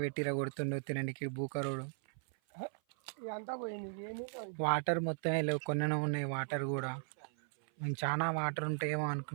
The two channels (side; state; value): left; silent; 53 dB below the other